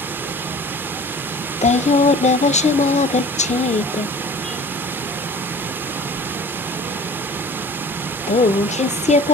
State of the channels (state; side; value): normal; both; correlation 0.44